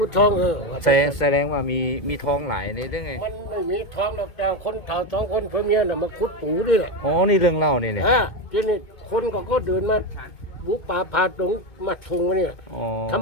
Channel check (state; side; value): late; right; 2.2 ms